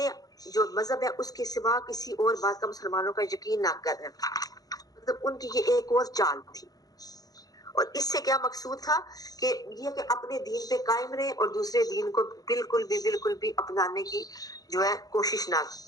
جو مذہب ہے اس کے سوا کسی اور بات کا مسلمانوں کا یقین نہ کریں۔ مطلب ان کی یہ ایک اور چال تھی، اور اس سے کیا مقصود تھا کہ یہ کہ اپنے دین پہ قائم رہے اور دوسرے دین کو بالکل بھی اپنانے کی جو ہے کوشش نہ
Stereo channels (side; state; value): right; late; 0.18 ms